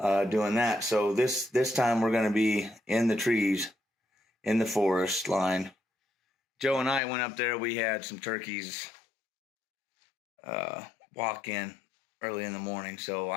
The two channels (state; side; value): drops out; right; at 7.0 s